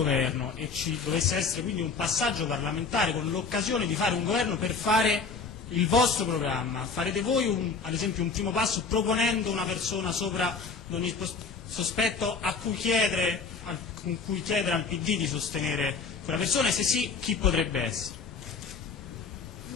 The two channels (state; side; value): quieter; right; 4.8 dB